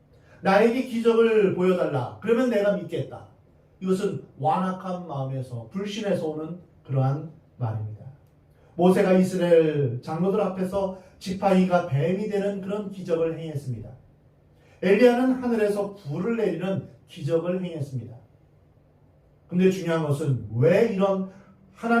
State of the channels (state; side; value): identical; both; correlation 1.00